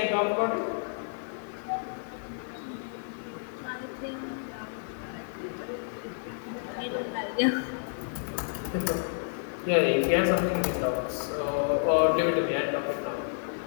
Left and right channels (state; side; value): silent; right; digital silence